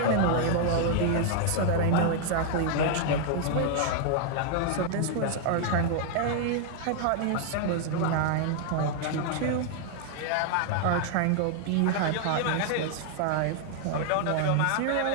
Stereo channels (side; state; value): both; different; correlation 0.00